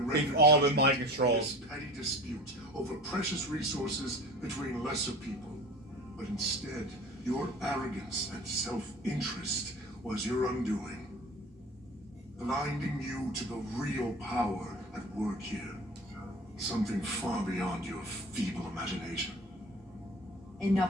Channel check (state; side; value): normal; both; correlation 0.38